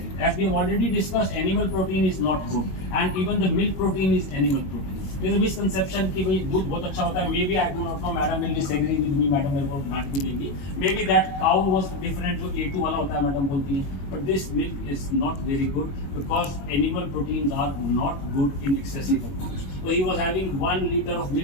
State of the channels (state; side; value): late; right; 21 ms